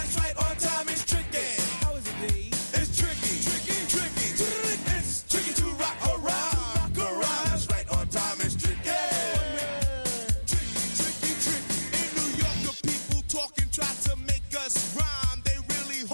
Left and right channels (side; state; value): both; inverted; correlation -1.00